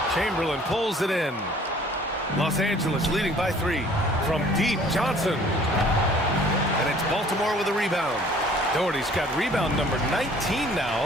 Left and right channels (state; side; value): normal; both; correlation 0.54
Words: Chamberlain pulls it in. Los Angeles leading by 3. From deep, Johnson. And it's Baltimore with a rebound. Doherty's got rebound number 19